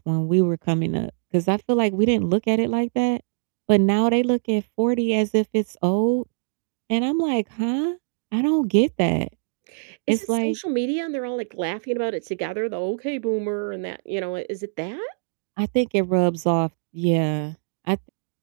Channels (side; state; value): left; silent; digital silence